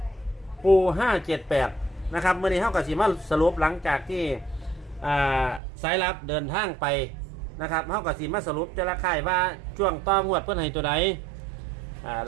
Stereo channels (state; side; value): drops out; left; at 5.6 s